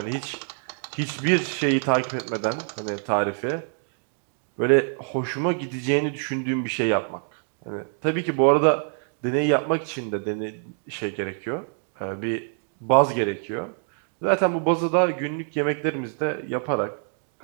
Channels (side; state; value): left; silent; 56 dB below the other